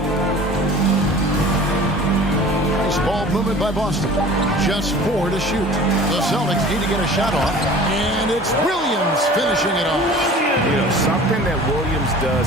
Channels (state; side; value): normal; both; correlation 0.43